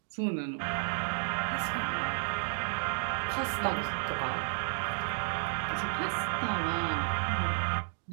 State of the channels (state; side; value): silent; left; digital silence